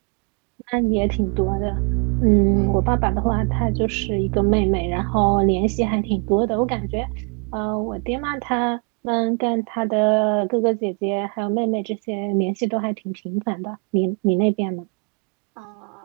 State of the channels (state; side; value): quieter; left; 35.2 dB